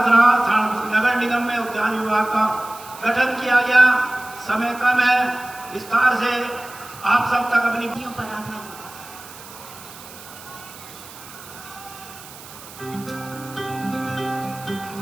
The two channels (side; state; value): right; noise; hiss, 17 dB below the sound